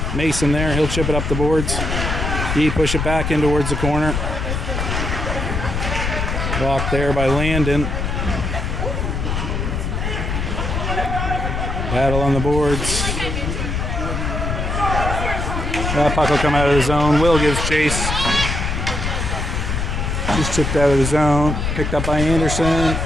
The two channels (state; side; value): noise; left; rumble, 2 dB below the sound